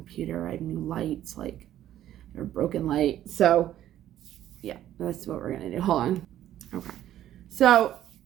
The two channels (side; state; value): left; quieter; 12.3 dB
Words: I have new lights, like a broken light. So yeah, that's what we're gonna do. Hold on. Okay. So